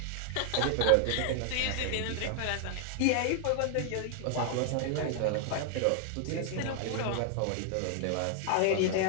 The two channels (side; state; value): both; different; correlation 0.00